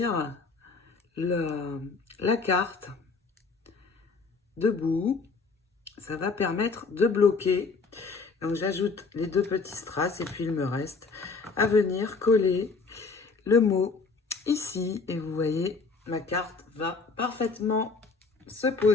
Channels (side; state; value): right; quieter; 4.4 dB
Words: la carte debout. Ça va permettre de bloquer. Donc j'ajoute les deux petits strass et puis il me reste à venir coller le mot ici. Et vous voyez, ma carte va parfaitement se